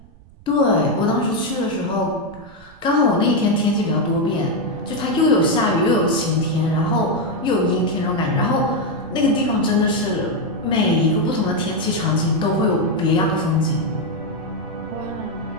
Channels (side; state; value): right; noise; rumble, 24 dB below the sound